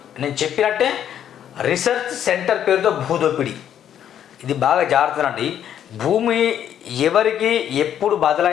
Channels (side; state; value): right; quieter; 9.9 dB